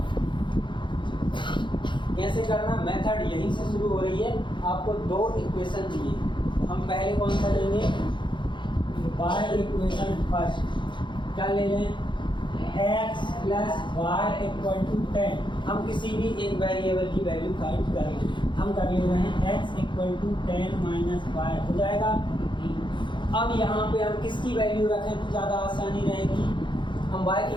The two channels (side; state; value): right; late; 0.23 ms